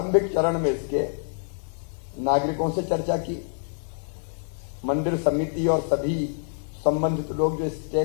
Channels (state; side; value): silent; right; 61 dB below the other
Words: चरण में इसके नागरिकों से चर्चा की, मंदिर समिति और सभी संबंधित लोग जो